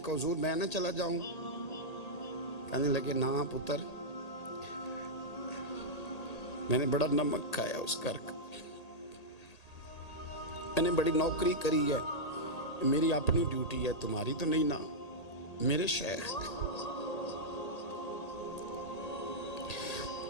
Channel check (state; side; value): late; right; 1.8 ms